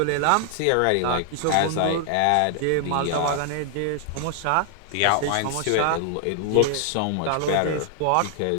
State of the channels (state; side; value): different; both; correlation 0.00